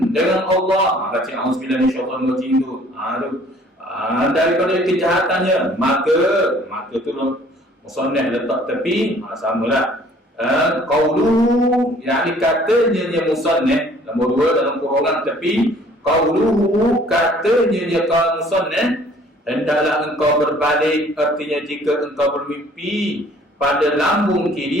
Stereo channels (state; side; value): normal; both; correlation 0.55